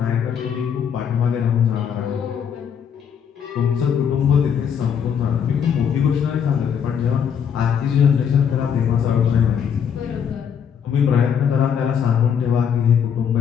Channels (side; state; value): right; quieter; 7.8 dB